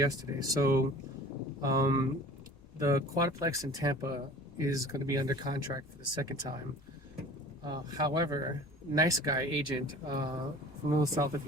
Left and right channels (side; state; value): left; noise; rumble, 27 dB below the sound